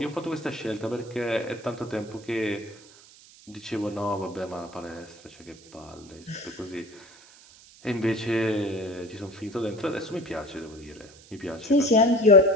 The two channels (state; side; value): noise; right; hiss, 23 dB below the sound